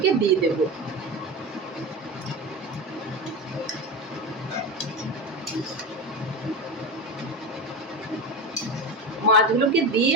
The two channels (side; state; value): both; normal; correlation 0.21